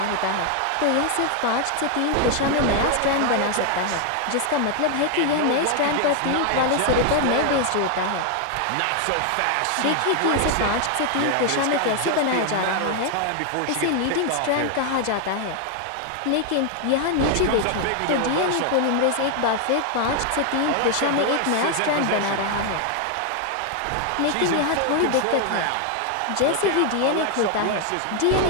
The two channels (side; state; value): both; different; correlation 0.00